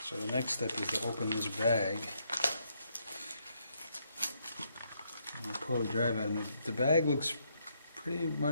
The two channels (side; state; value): both; inverted; correlation -0.75